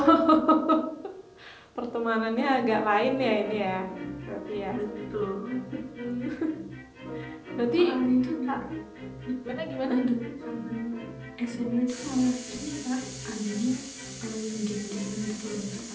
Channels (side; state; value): both; identical; correlation 1.00